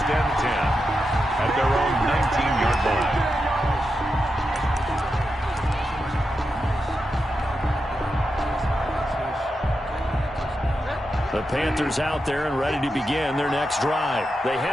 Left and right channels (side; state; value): both; normal; correlation 0.88